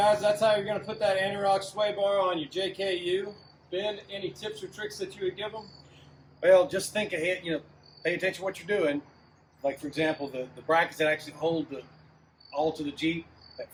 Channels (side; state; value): both; identical; correlation 1.00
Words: that's how you're going to put that Antirock sway bar on your JKU. Ben, any tips or tricks that you would give them? Well, just think ahead, pay attention to what you're doing. Like, for example, the brackets that actually hold all to the Jeep, that